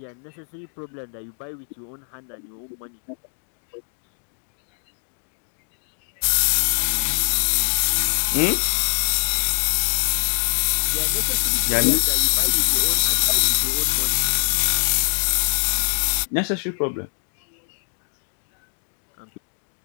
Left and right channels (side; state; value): right; silent; digital silence